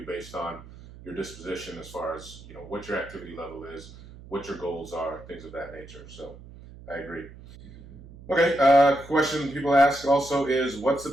based on your disposition as far as, what your activity level is, what your goals are, things of that nature. So I agree. Okay, question people ask also is, what's the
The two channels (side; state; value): right; noise; hum, 18 dB below the sound